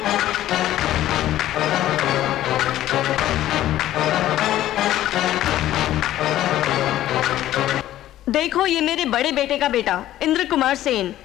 देखो ये मेरे बड़े बेटे का बेटा इंद्र कुमार सेन।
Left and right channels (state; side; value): quieter; right; 13.6 dB